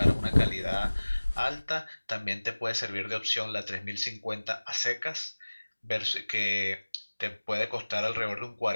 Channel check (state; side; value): inverted; both; correlation -1.00